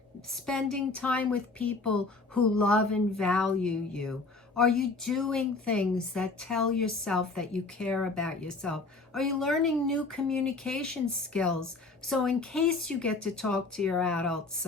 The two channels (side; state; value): right; quieter; 3.7 dB